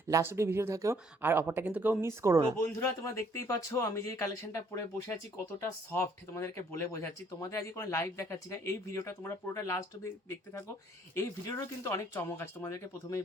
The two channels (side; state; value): both; normal; correlation 0.63